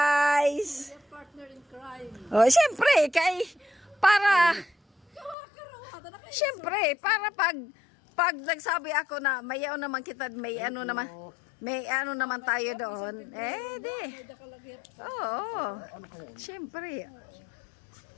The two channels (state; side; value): drops out; right; at 5.4 s